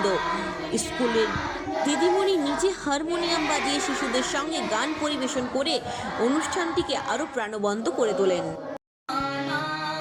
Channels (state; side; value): identical; both; correlation 1.00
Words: স্কুলের দিদিমণি নিজে হারমোনিয়াম বাজিয়ে শিশুদের সঙ্গে গান পরিবেশন করে অনুষ্ঠানটিকে আরও প্রাণবন্ত করে তোলেন।